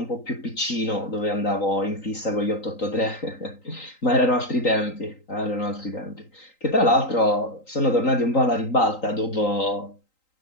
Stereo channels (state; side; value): late; right; 3.9 ms